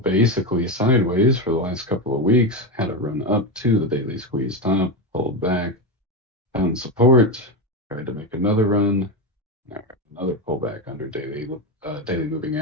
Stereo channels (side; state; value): both; normal; correlation 0.14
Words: sideways for the last couple of weeks. Had a run up to the daily squeeze top, pulled back, found support, tried to make another run. Now another pullback under daily moving